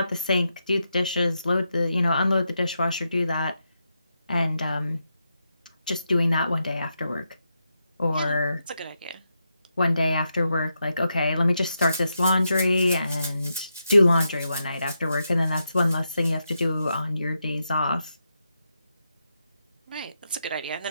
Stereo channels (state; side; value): inverted; both; correlation -0.85